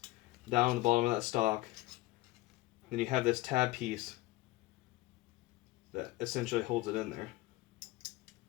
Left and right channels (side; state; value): right; quieter; 18.5 dB